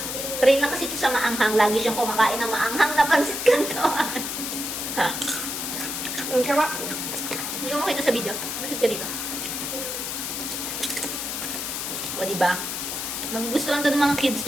Train na kasi ito sa maanghang. Lagi siyang kumakain ng maanghang na pansit canton. Ang sarap. Hindi ko makita sa video. Masit ka dito. O, diba? Magugustuhan to ng mga kids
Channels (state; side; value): noise; left; hiss, 4 dB below the sound